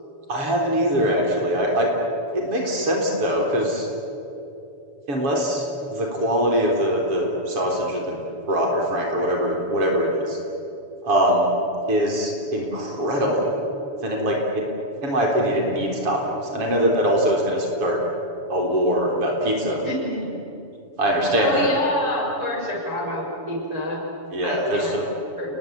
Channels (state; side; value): late; left; 7.0 ms